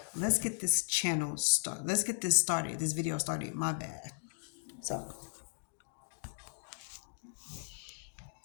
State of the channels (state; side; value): silent; right; digital silence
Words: let's get this channel started. Let's get this started. This video started. My bad. So